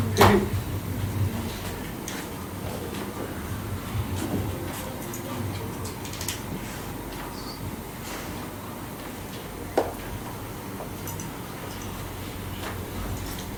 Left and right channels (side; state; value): both; identical; correlation 1.00